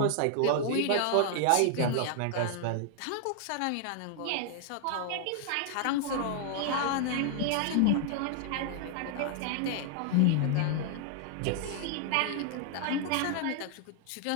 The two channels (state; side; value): different; both; correlation 0.00